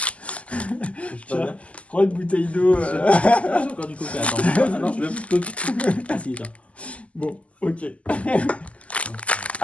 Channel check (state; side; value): late; right; 0.065 ms